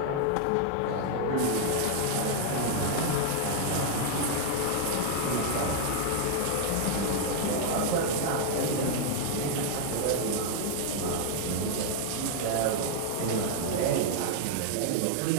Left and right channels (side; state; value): both; different; correlation 0.00